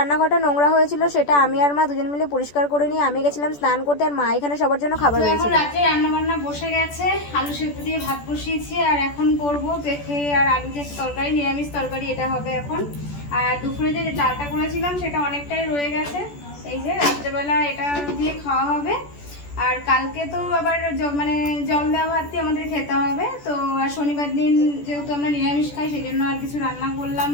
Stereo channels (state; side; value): late; right; 14 ms